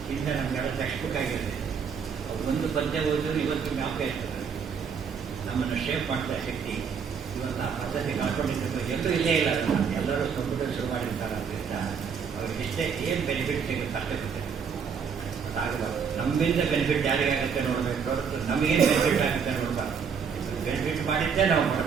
ಹಿಂದೆ ನಮಗೆಲ್ಲ ಟೆಕ್ಸ್ಟ್ ಬುಕ್ ಆಗಿದೆ. ಅವ್ರು ಒಂದು ಪದ್ಯ ಓದಿದ್ರು ಇವತ್ತು ಜ್ಞಾಪಕ ಇರ್ತದೆ. ನಮ್ಮನ್ನು ಶೇಪ್ ಮಾಡ್ತಾ ಶಕ್ತಿ ಇವತ್ತು ಆ ಪದ್ಧತಿ ಕಳ್ಕೊಂಡಿದ್ದು ಎಲ್ಲರೂ ಇಲ್ಲೇ ಇಲ್ಲ. ಎಲ್ಲರೂ ಕಂಪ್ಯೂಟರ್ ಶುರು ಮಾಡಿರ್ತಾರೆ. ಅದರಿಂದ ಅವ್ರಿಗೆ ಇಷ್ಟೇ ಏನು ಬೆನಿಫಿಟ್ ಸಿಗುತ್ತೆ ಅಷ್ಟೇ ಗೊತ್ತಿದೆ. ಅದಾಗಬಾರ್ದು. ನಮ್ಮಿಂದ ಬೆನಿಫಿಟ್ ಯಾರಿಗಾಗುತ್ತೆ ನೋಡಬೇಕು ಹೊರತು ನಮಗೇನು ಬೆನಿಫಿಟ್ ಆಗುತ್ತೆ ನೋಡಬಾರ್ದು. ಬೆನಿಫಿಟ್ ಮಾಡಿದ್ದೇ ನಾವು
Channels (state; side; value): quieter; left; 6.5 dB